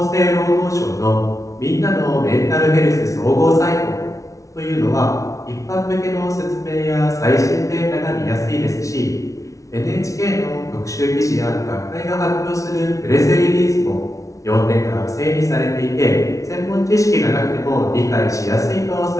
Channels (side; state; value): right; late; 0.16 ms